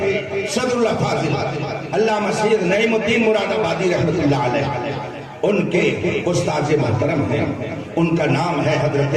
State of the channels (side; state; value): both; identical; correlation 1.00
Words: صدر اللہ فاضل علامہ سید نعیم الدین مراد آبادی رحمۃ اللہ علیہ، ان کے استاد محترم ہیں، ان کا نام ہے حضرت